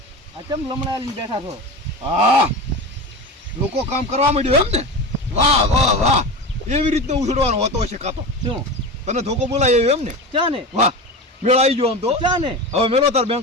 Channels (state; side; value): normal; both; correlation 0.26